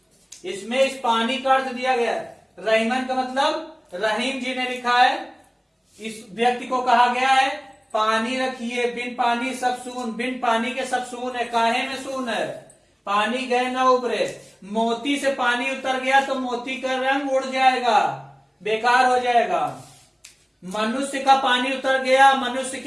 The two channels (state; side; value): identical; both; correlation 1.00